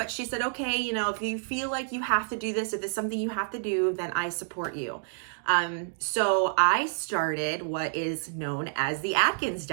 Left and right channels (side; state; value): left; silent; digital silence